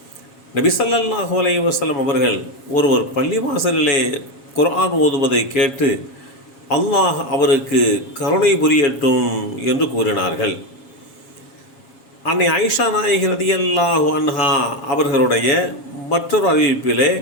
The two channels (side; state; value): right; late; 7.3 ms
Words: நபி ஸல்லல்லாஹு அலைஹி வஸல்லம் அவர்கள் ஒருவர் பள்ளிவாசலிலே குர்ஆன் ஓதுவதை கேட்டு அல்லாஹ் அவருக்கு கருணை புரியட்டும் என்று கூறினார்கள். அன்னை ஆயிஷா நாயகி ரதியல்லாஹு அன்ஹா அவர்களுடைய மற்றொரு அறிவிப்பிலே,